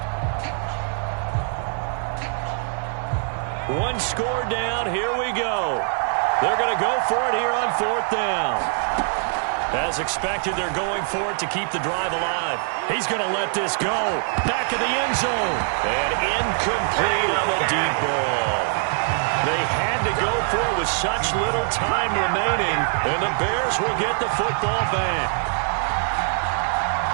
One score down. Here we go. They're going to go for it here on 4th down. As expected, they're going for it to keep the drive alive. He's going to let this go. Back of the end zone. And incomplete on the deep ball. They had to go for it with such little time remaining, and the Bears will get the football back.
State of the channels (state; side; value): silent; left; 63 dB below the other